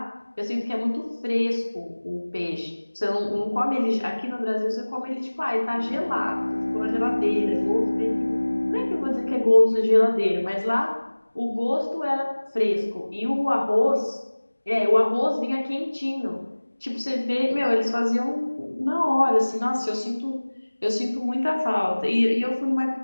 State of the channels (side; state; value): both; inverted; correlation -1.00